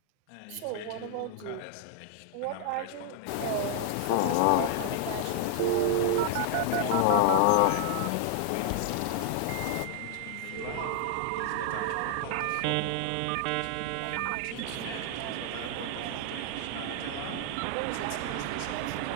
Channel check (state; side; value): different; both; correlation 0.00